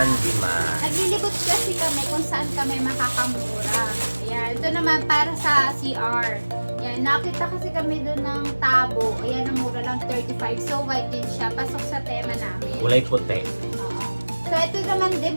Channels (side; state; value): both; inverted; correlation -1.00